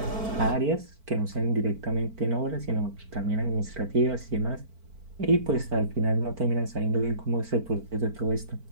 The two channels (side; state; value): left; late; 4.5 ms